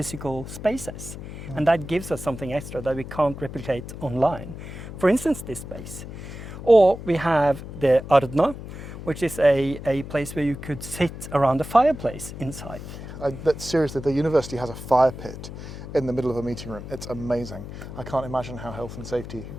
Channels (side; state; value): left; noise; hum, 11 dB below the sound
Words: spaces. And that gives us something extra that we can't replicate online. For instance, this space. Or we have the Arna, which is a place where you could sit around a fireplace inside. Seriously, the university has a fire pit in the middle of a meeting room. It's amazing. I can't imagine how health and safety